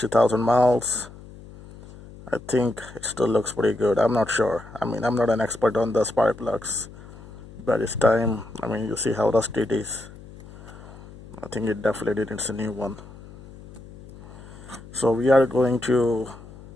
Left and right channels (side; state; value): left; noise; hum, 18 dB below the sound